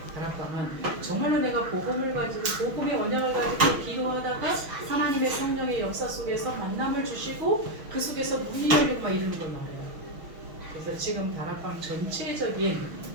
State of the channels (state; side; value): late; left; 6.3 ms